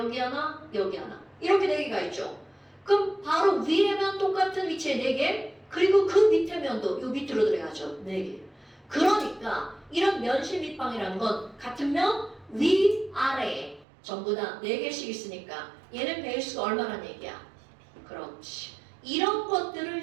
하나, 여기 하나. 이렇게 4개가 있죠. 그럼 바로 위에 면 똑같은 위치에 4개, 그리고 그 밑에 면도 요 밑으로 들어가죠. 4개. 그러니까 이런 면실 밑방이라는 건 같은 면 위, 아래에 전부 다 4개씩 있으니까 얘는 베이스가 얼마나 얘기야? 그렇지. 이런 것들을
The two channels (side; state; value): left; drops out; at 13.9 s